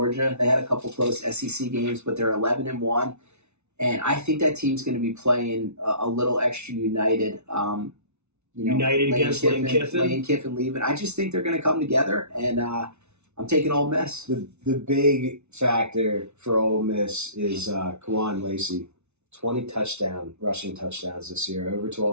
They had a couple close SEC games, but they're 11-1, and I think that team's going to be playing a little extra united. United against Lane Kiffin. Lane Kiffin leaving. I just think they're going to come together, and I'm taking Ole Miss. The big factor for Ole Miss is Kawan Lacey. 20 rushing touchdowns this year, over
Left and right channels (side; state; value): left; late; 0.81 ms